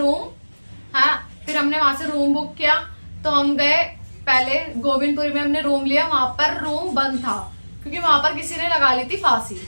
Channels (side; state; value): both; inverted; correlation -1.00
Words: हाँ फिर हमने वहां से रूम बुक किया। तो हम गए पहले गोविंदपुरी में हमने रूम लिया, वहां पर रूम बंद था क्योंकि वहां पर किसी ने लगा ली थी फांसी,